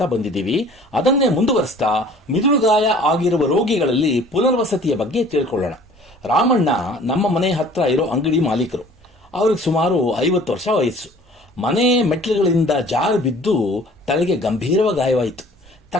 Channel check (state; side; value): normal; both; correlation 0.51